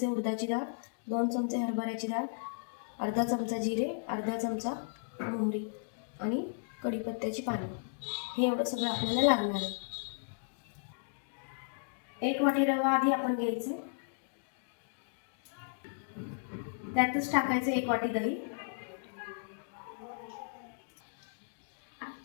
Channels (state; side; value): silent; right; digital silence